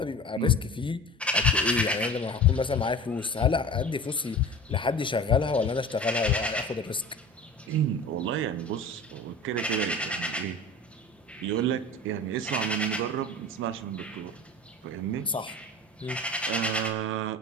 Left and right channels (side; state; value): both; normal; correlation 0.37